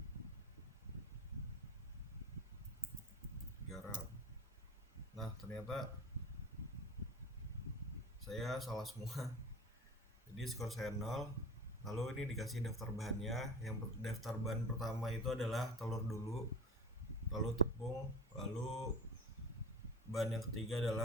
garam. Nah, ternyata saya salah semua. Jadi skor saya 0. Lalu ini dikasih daftar bahannya. Yang daftar bahan pertama itu adalah telur dulu, lalu tepung, lalu bahan yang ketiga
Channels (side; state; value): both; normal; correlation 0.34